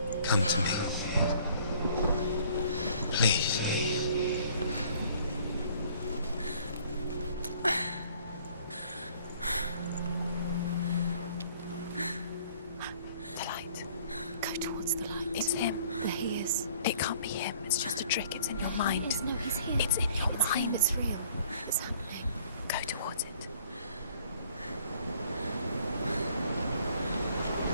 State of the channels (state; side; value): inverted; both; correlation -0.57